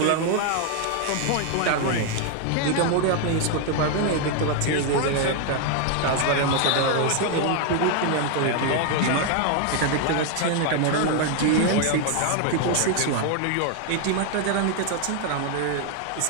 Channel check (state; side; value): different; both; correlation 0.00